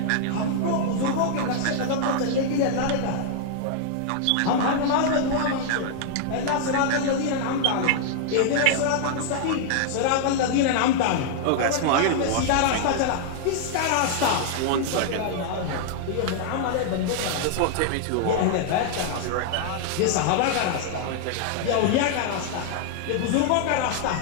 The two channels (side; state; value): both; different; correlation -0.01